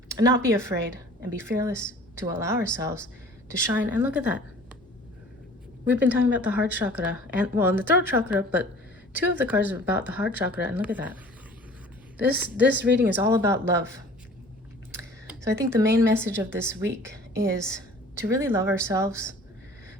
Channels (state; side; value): normal; both; correlation 0.47